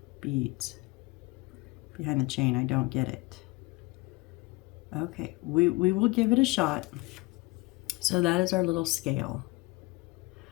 beads behind the chain. I don't get it. Okay, we will give it a shot. So that is our little scale.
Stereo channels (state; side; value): quieter; right; 23.9 dB